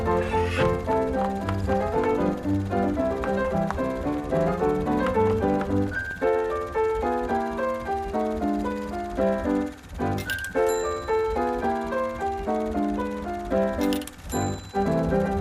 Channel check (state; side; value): identical; both; correlation 1.00